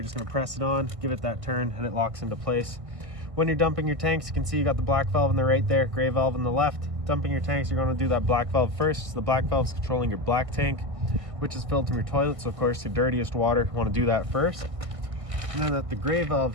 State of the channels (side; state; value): left; late; 1.6 ms